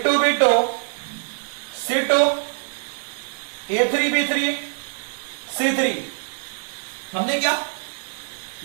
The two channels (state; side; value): silent; left; 59 dB below the other